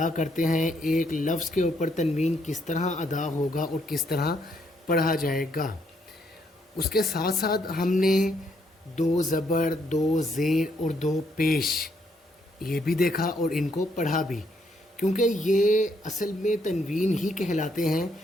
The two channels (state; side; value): normal; both; correlation 0.73